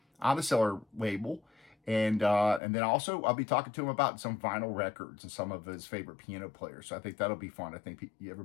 on the Cellar label. And then also I'll be talking to him about some vinyl records and some of his favorite piano players. So I think that'll be fun. I think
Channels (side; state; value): right; drops out; at 2.6 s